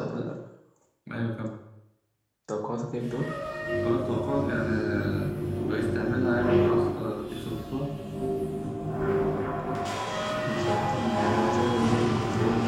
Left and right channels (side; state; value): both; identical; correlation 1.00